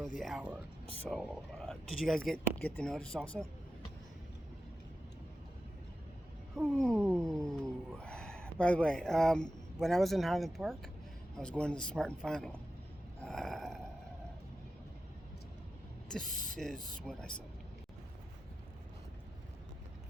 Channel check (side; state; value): both; normal; correlation 0.91